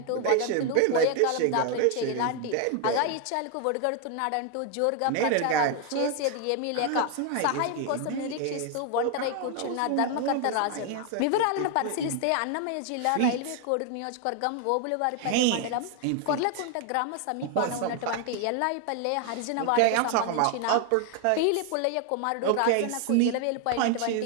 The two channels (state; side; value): different; both; correlation 0.01